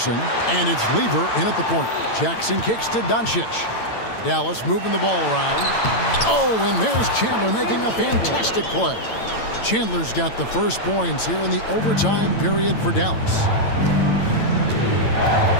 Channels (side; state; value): right; late; 8.9 ms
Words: and it's Lever in at the point. Jackson kicks to Doncic. Dallas moving the ball around. Oh, and there's Chandler making a fantastic play. Chandler's got the first points here in the overtime period for Dallas.